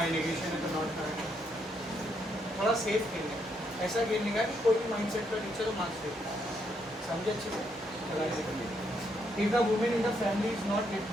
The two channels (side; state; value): both; normal; correlation 0.76